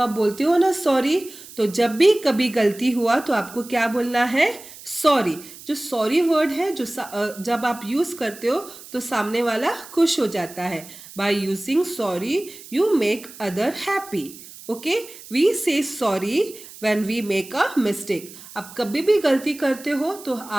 बोलते हो ना सॉरी। तो जब भी कभी गलती हुआ तो आपको क्या बोलना है? सॉरी। जो सॉरी वर्ड है जब आप यूज़ करते हो तो सामने वाला खुश हो जाता है. By using sorry you make other happy. Okay, we say sorry when we make a mistake. आप कभी भी गलती करते हो तो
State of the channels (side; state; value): right; noise; hiss, 17 dB below the sound